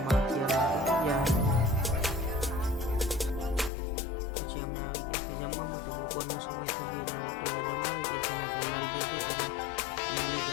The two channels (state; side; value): drops out; right; at 3.7 s